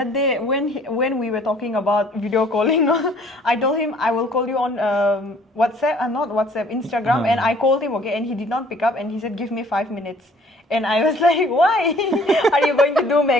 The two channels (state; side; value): normal; both; correlation 0.56